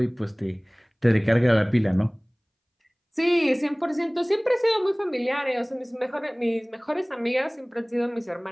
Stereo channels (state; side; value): identical; both; correlation 1.00